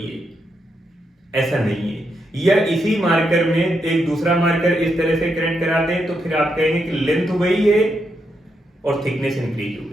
है, ऐसा नहीं है। या इसी मार्कर में एक दूसरा मार्कर इस तरह से कनेक्ट करा दें तो फिर आप कहेंगे कि लेंथ वही है और थिकनेस इंक्रीज हो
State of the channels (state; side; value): normal; both; correlation 0.82